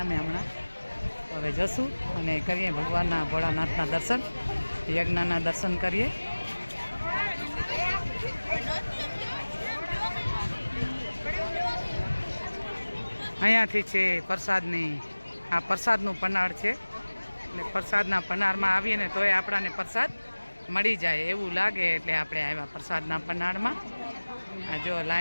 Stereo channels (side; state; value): both; inverted; correlation -1.00